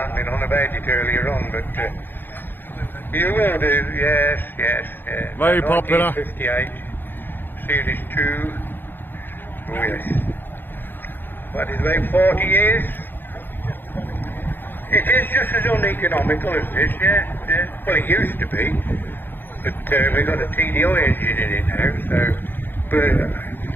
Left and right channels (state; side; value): late; right; 0.096 ms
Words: on about it earlier on, but you will do, yes. Very popular. 1958, Series 2. Oh yes. What is about 40 years? It is just as uneconomical as this, yeah. Well, it used to be, but we've got a TDI engine in it now, so... But